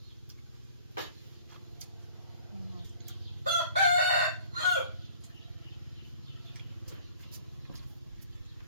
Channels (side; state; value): both; inverted; correlation -0.51